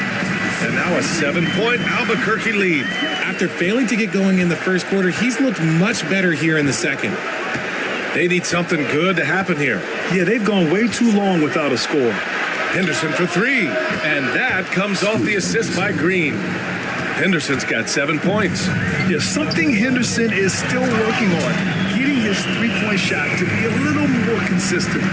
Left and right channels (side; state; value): both; identical; correlation 1.00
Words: And now a 7-point Albuquerque lead. After failing to get going in the first quarter, he's looked much better here in the second. They need something good to happen here. Yeah, they've gone way too long without a score. Henderson for 3. And that comes off the assist by Green. Henderson's got 7 points. Yeah, something Henderson is still working on. Getting his three-point shot to be a little more consistent.